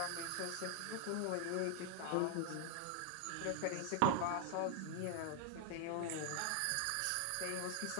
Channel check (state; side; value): different; both; correlation 0.00